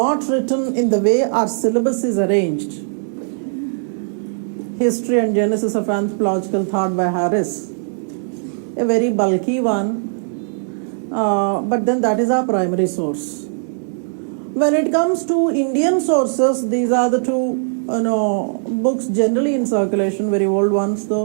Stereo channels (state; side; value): silent; left; digital silence